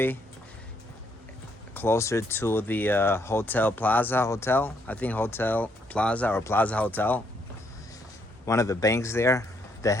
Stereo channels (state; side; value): normal; both; correlation 0.72